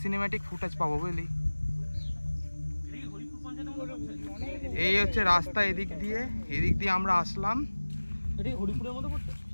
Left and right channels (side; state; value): both; inverted; correlation -1.00